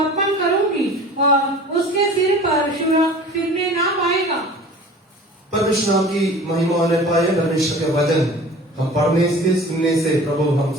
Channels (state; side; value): normal; both; correlation 0.42